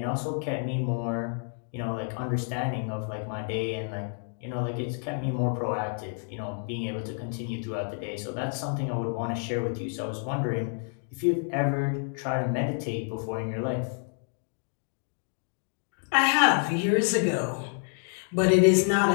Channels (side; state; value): right; silent; 56 dB below the other